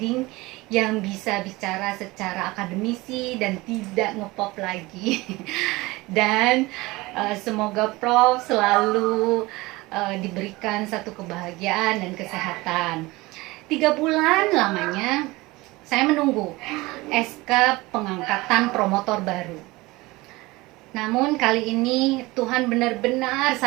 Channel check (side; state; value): left; quieter; 21.4 dB